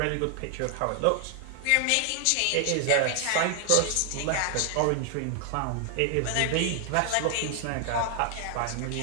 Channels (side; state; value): both; different; correlation 0.00